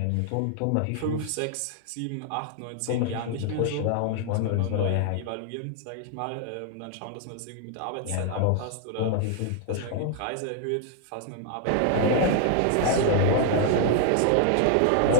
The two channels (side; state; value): both; different; correlation 0.00